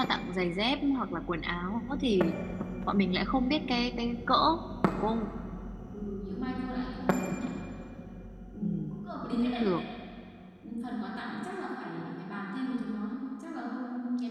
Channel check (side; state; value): both; identical; correlation 1.00